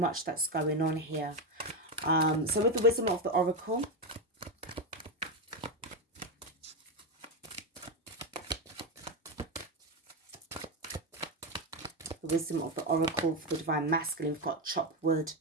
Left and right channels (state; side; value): normal; both; correlation 0.10